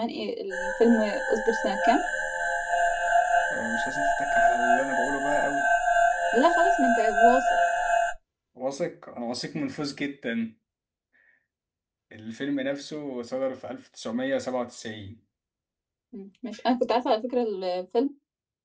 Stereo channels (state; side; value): identical; both; correlation 1.00